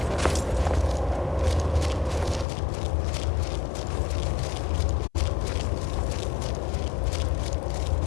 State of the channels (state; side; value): drops out; right; at 2.5 s